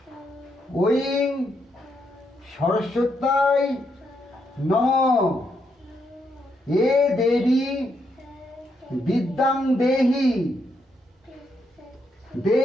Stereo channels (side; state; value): both; normal; correlation 0.78